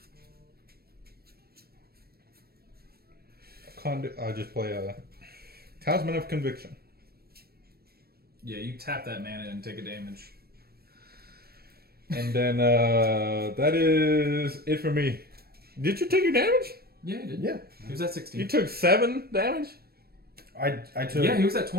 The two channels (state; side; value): late; left; 0.45 ms